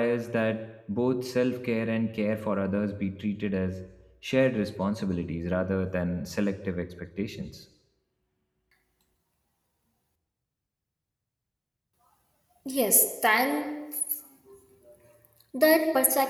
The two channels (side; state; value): both; identical; correlation 1.00